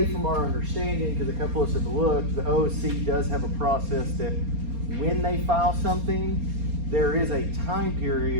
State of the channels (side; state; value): left; late; 4.3 ms